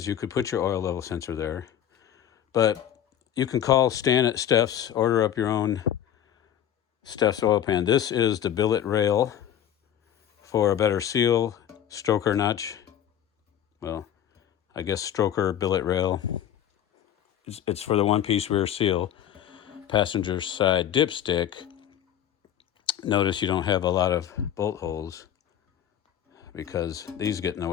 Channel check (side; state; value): right; quieter; 10.2 dB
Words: You could put your oil level sensor there. But you can call Stan at Stef's, order up your own Stef's oil pan. This is the billet rail for a better seal, stroker notch. Well, I guess stroker billet rail. It's for the one-piece rear seal. Passenger side dipstick. Notice you don't have a lot of bolt holes because these get in the